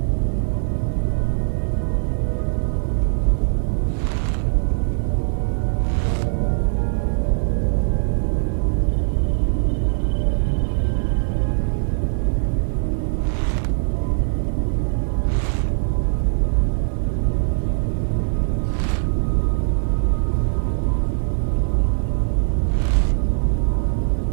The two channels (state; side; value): silent; left; 65 dB below the other